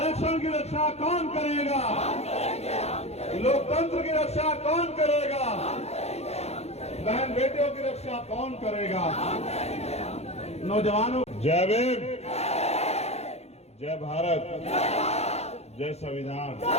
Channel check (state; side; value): late; right; 0.31 ms